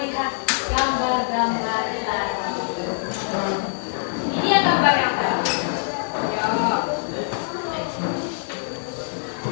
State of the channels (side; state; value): right; silent; digital silence